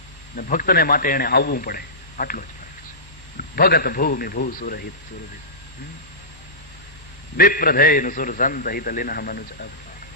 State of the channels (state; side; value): late; right; 1.1 ms